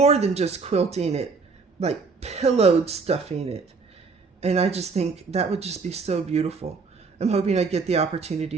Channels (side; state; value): left; quieter; 4.7 dB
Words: than just quilting it, like pillowed stuffing it. And I just think that would just be so beautiful. I'm hoping I get the